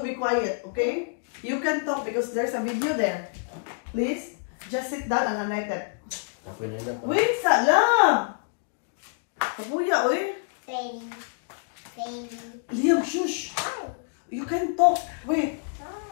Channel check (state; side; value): silent; right; digital silence